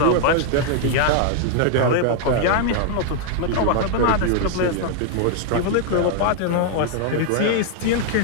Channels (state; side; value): different; both; correlation 0.00